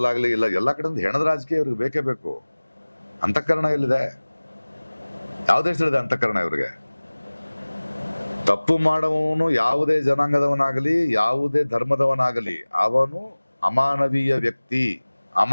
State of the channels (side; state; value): both; inverted; correlation -1.00